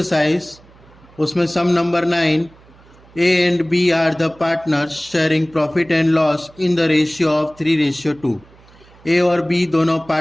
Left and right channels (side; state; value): right; noise; hum, 26 dB below the sound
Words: उसमें sum number 9, A and B are the partners sharing profit and loss in the ratio of 3:2। A और B दोनों